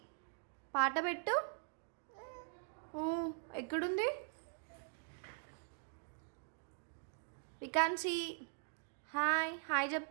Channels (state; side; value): silent; left; digital silence